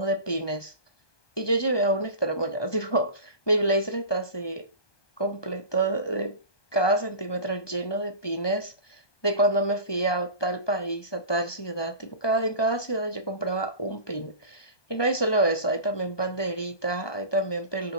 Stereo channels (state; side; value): late; right; 1.2 ms